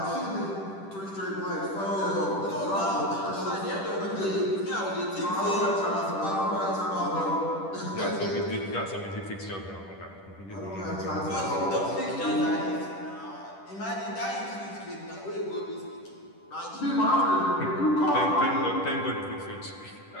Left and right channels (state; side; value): late; right; 10 ms